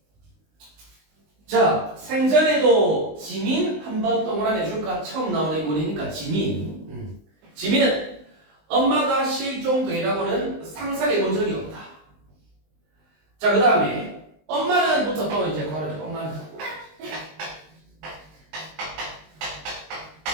자, 생전에도 지민 한번 동그라미 해줄까? 처음 나오는 인물이니까 지민. 지민은 엄마가 실종되라고는 상상해 본 적이 없다. 자, 그 다음에 엄마는부터 또 이제 걸어줘.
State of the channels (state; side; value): late; left; 19 ms